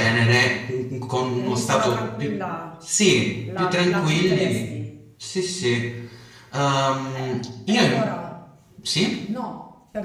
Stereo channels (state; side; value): identical; both; correlation 1.00